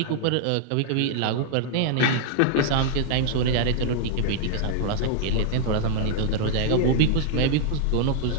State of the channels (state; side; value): different; both; correlation -0.01